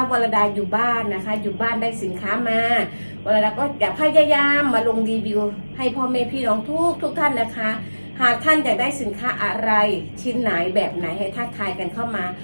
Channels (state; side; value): inverted; both; correlation -1.00